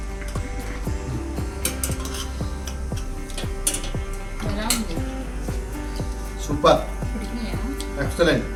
ఎలా ఉంది? సూపర్, ఉడికినాయా? ఎక్సలెంట్.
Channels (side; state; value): both; identical; correlation 1.00